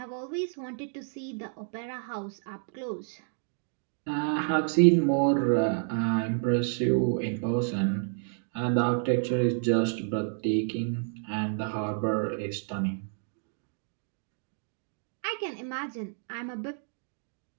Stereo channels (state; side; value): silent; left; 58 dB below the other